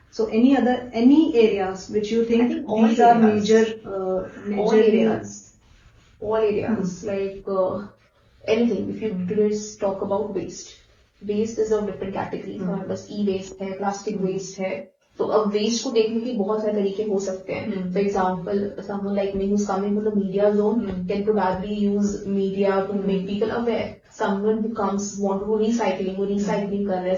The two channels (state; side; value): identical; both; correlation 1.00